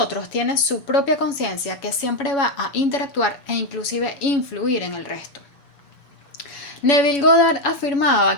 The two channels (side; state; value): right; late; 7.1 ms